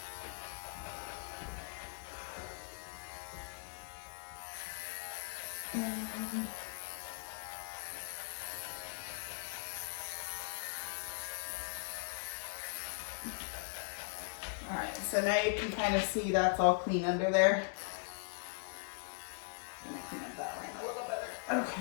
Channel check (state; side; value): silent; right; 51 dB below the other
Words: Alright, so now you can kind of see that's all clean under there. I'm gonna clean up that line a little better.